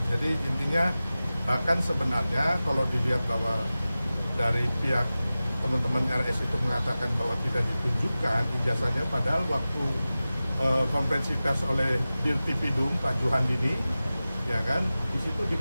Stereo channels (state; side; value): inverted; both; correlation -0.96